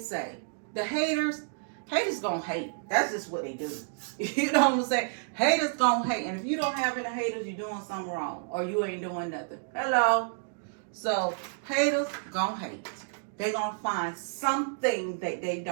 The haters gonna hate. That's just what they do. You know what I'm saying? Haters gonna hate. And if you don't have any haters, you're doing something wrong. Or you ain't doing nothing. Hello? So, haters gonna hate. They're gonna find something that they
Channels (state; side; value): silent; left; digital silence